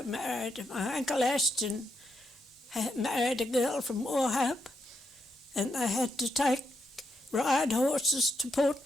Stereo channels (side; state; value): both; normal; correlation 0.81